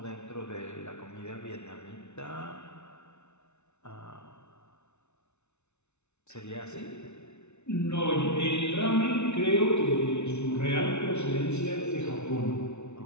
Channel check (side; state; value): right; late; 0.82 ms